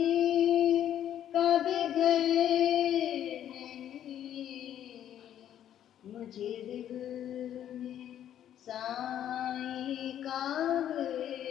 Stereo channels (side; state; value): right; quieter; 10.7 dB